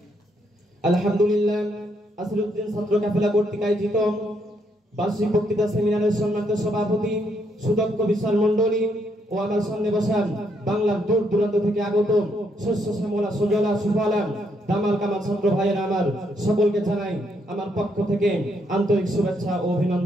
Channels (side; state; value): both; normal; correlation 0.75